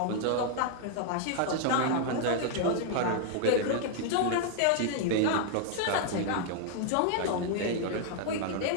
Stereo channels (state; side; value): different; both; correlation 0.00